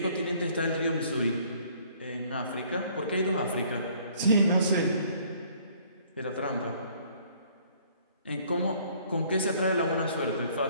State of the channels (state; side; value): inverted; both; correlation -0.60